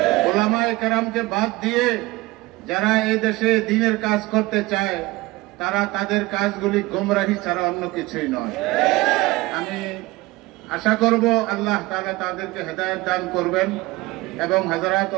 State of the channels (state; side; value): quieter; left; 20.5 dB